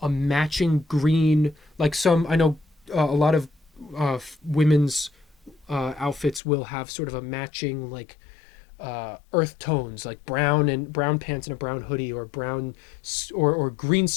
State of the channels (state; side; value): drops out; right; at 6.4 s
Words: a matching green, like some I know a lot of women's outfits will have sort of a matching like earth tones, like brown pants and a brown hoodie, or or green